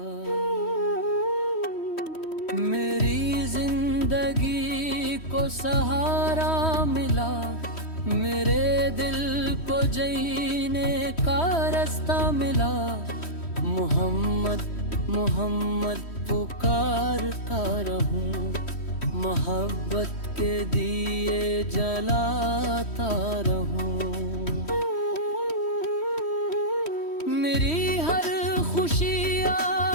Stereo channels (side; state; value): right; late; 3.1 ms